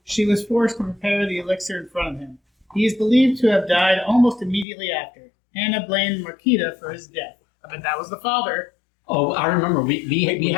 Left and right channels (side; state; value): right; drops out; at 4.7 s